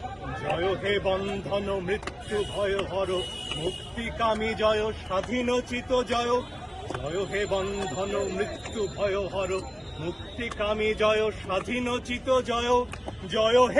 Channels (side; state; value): both; identical; correlation 1.00